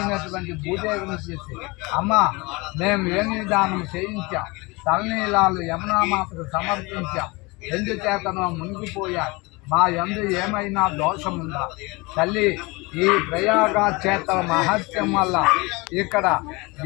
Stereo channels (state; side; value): quieter; right; 25.3 dB